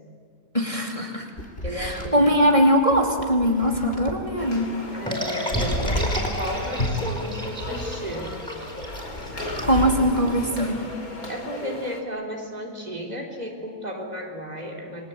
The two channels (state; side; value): late; right; 1.6 ms